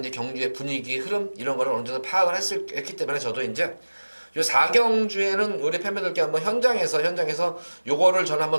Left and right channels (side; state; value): both; inverted; correlation -1.00